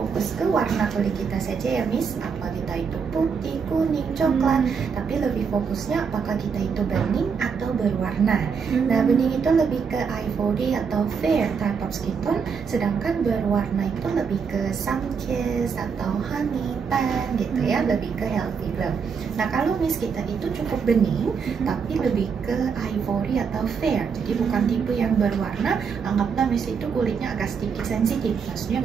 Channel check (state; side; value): quieter; left; 6.1 dB